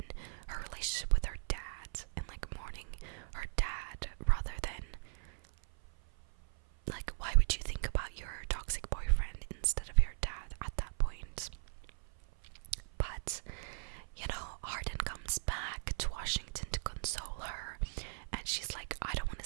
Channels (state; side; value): silent; left; 52 dB below the other